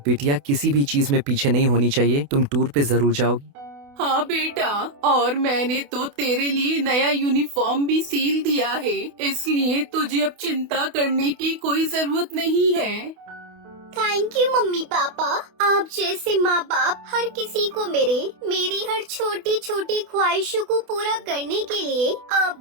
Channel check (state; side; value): late; left; 28 ms